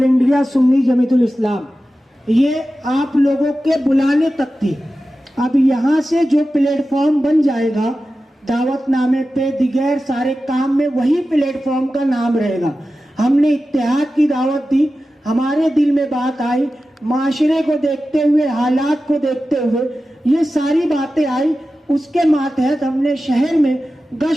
انڈیا سنی جمعیت الاسلام. یہ آپ لوگوں کے بلانے تک تھی. اب یہاں سے جو پلیٹ فارم بن جائے گا، دعوت نامے پہ دیگر سارے کام میں وہی پلیٹ فارم کا نام رہے گا. ہم نے اتحاد کی دعوت دی، ہمارے دل میں بات آئی، معاشرے کو دیکھتے ہوئے، حالات کو دیکھتے ہوئے یہ ساری باتیں آئی. اس کے ماتحت ہم نے شہر میں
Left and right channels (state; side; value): normal; both; correlation 0.94